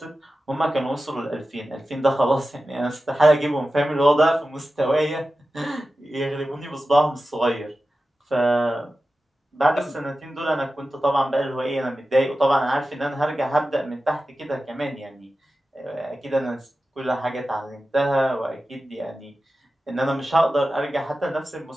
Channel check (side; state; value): both; normal; correlation 0.94